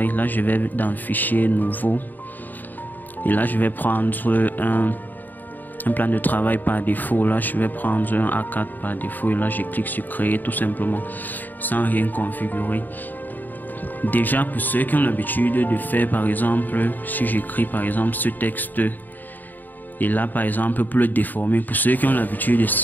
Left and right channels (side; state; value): right; late; 0.087 ms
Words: Là, je vais dans Fichier, Nouveau. Et là, je vais prendre un plan de travail par défaut. Là, je vais prendre un A4 par défaut. Et là, je clique sur Créer tout simplement sans rien configurer. Déjà, pour ceux qui ont l'habitude de faire, par exemple, si j'écris par exemple ce texte et là par exemple pour le déformer, pour ceux qui ont l'habitude